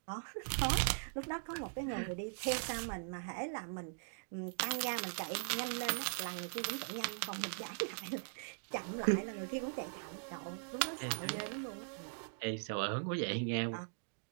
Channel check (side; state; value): left; silent; digital silence